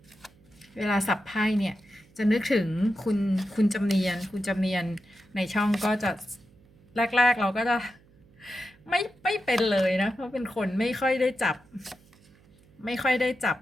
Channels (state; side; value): noise; right; hum, 29 dB below the sound